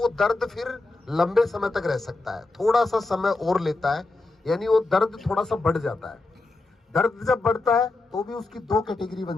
दर्द फिर लंबे समय तक रह सकता है, थोड़ा सा समय और लेता है, यानी वो दर्द थोड़ा सा बढ़ जाता है। दर्द जब बढ़ता है तो भी उसकी 2 कैटेगरी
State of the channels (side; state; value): right; quieter; 3.2 dB